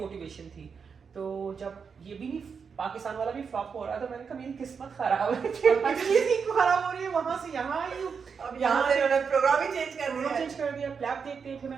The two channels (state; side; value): quieter; left; 6.0 dB